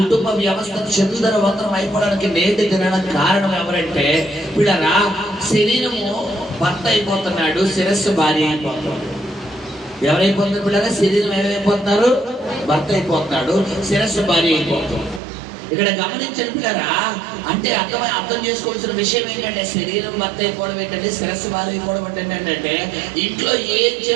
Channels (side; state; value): left; drops out; at 15.2 s